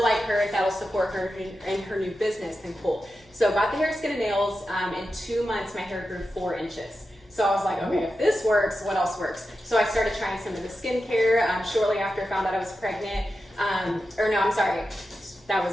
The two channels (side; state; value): both; normal; correlation 0.90